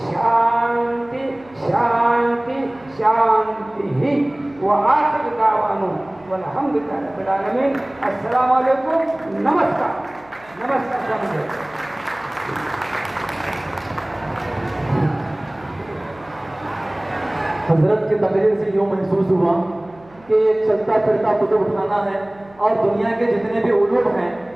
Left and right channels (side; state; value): right; noise; hum, 26 dB below the sound